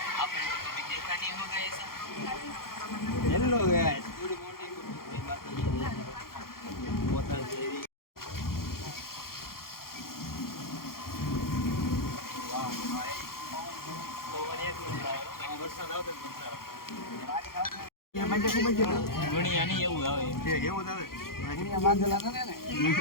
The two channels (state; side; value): late; right; 0.92 ms